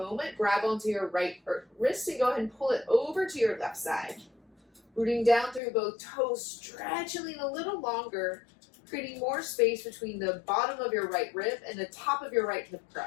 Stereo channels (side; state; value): right; drops out; at 5.6 s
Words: Grab onto your right wrist and go ahead and pull it over to your left side. Rooting down through both toes, stretching a little longer, creating more space between the bottom of your right rib and the top of your right hip